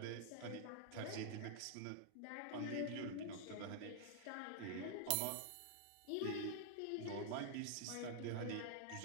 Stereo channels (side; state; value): both; different; correlation -0.01